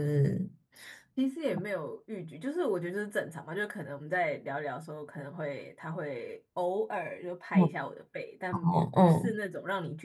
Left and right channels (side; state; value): both; identical; correlation 1.00